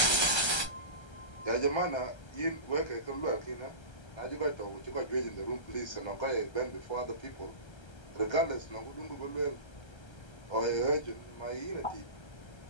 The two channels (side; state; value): right; late; 1.3 ms